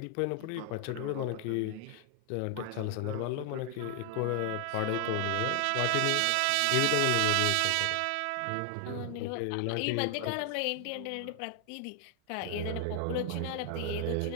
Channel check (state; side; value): different; both; correlation 0.00